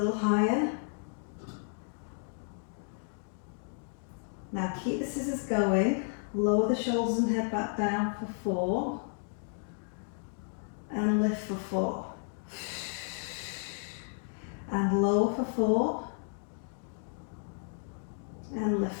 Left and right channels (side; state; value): right; silent; 56 dB below the other